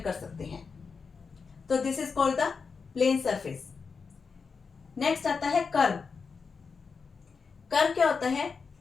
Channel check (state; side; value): quieter; right; 5.2 dB